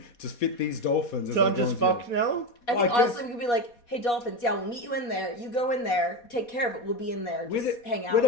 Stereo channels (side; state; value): right; late; 4.2 ms